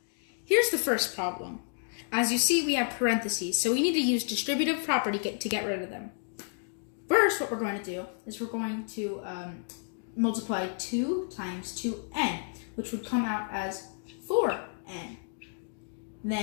Here's the first problem. As you see, we have parentheses, so we need to use distributive property to get rid of them. First, what we're going to do is we're going to multiply 2 times 2n, which would come out as 4n.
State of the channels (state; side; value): silent; right; 57 dB below the other